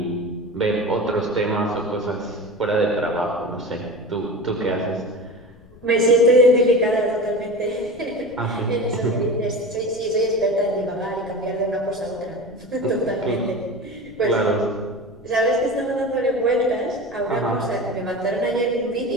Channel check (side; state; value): left; noise; rumble, 24 dB below the sound